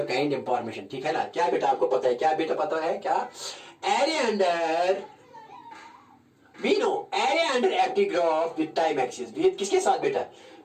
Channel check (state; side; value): identical; both; correlation 1.00